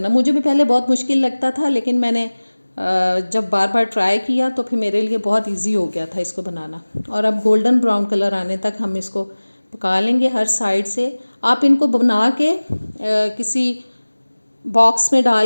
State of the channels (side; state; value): both; inverted; correlation -1.00